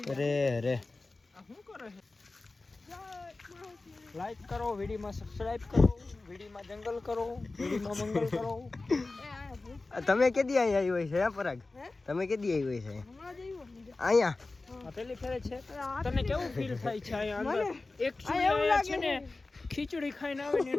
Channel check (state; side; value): quieter; right; 3.4 dB